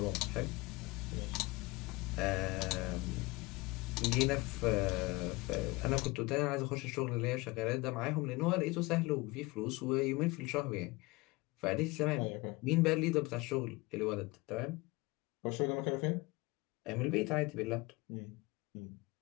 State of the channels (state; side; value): quieter; right; 23.2 dB